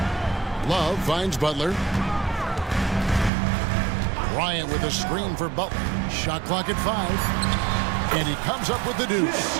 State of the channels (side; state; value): left; drops out; at 3.3 s